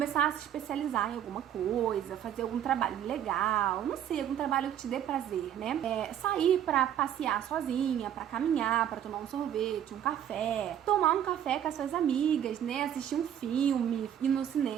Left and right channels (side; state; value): left; quieter; 10.1 dB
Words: a se especializar em alguma coisa, fazer algum trabalho legal, não sei, algum trabalho que te dê prazer, né? Sair pra passear sozinha, pra caminhar, pra tomar um sorvete, um café, tomar um café com as suas amigas, né? Assistir um filme, ir no